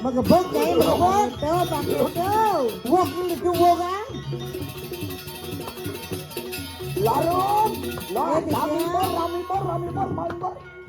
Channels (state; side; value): identical; both; correlation 1.00